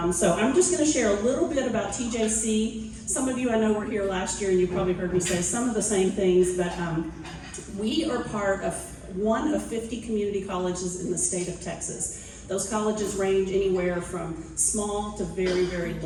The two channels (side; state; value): both; identical; correlation 1.00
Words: so I'm just going to share a little bit about TJC. Some of you I know were here last year, and you probably heard me say some of the same things, but we are part of one of 50 community colleges in the state of Texas. Those colleges range anywhere from small to very, very